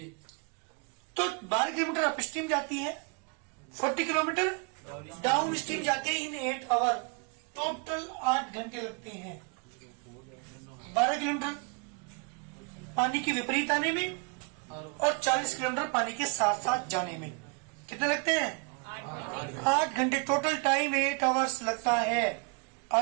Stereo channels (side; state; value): left; quieter; 34.0 dB